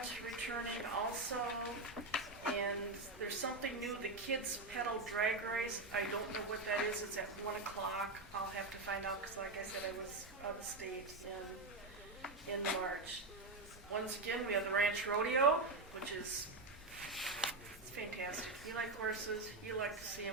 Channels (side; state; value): left; quieter; 3.2 dB